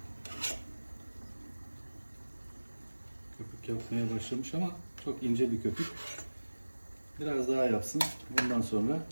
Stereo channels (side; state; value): both; inverted; correlation -1.00